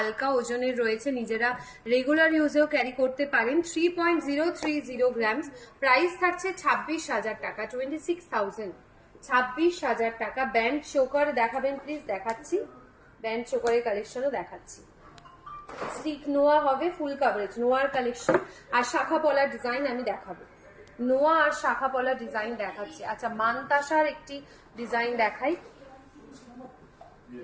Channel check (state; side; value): identical; both; correlation 1.00